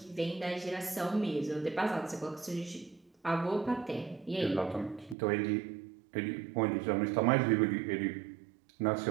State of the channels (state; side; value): drops out; left; at 5.2 s